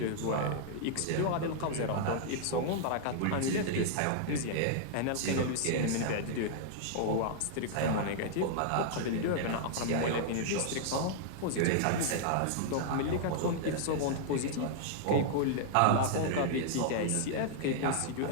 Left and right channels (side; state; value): both; different; correlation -0.01